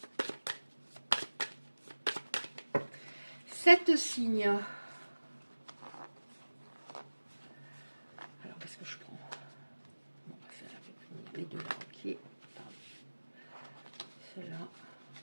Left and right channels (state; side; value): inverted; both; correlation -1.00